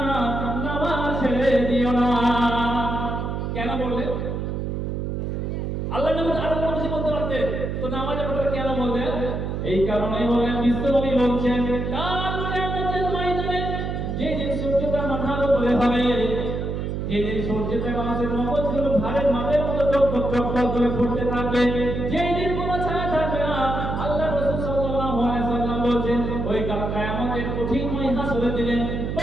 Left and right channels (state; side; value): noise; right; hum, 3 dB below the sound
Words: নামাজ ছেড়ে দিও না। কেন বললেন? আল্লাহ নবী আরো কিছু বলতে পারতেন, তো নামাজের কথা কেন বললেন? এই কারণেই বললেন, বিশ্বনবী বলছেন, কাল কিয়ামতের ময়দানে যেদিন সূর্যটা মাথার উপরে হবে, যেদিন সূর্যটা মানুষের মগজগুলো ভারের মাপের মতো টকটক টকটক করে ফুটতে থাকবে, যেদিন কোনো ছায়া থাকবে না, আল্লাহ রাসূল সাল্লাল্লাহু আলাইহি ওয়াসাল্লাম বলেন, ওই কাল কিয়ামতের কঠিন হাসরের দিনে